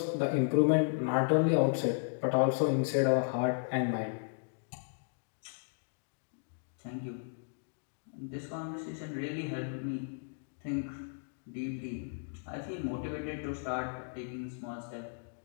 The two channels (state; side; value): silent; right; digital silence